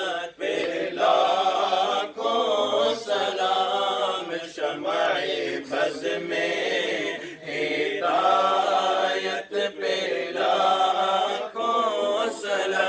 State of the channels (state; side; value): identical; both; correlation 1.00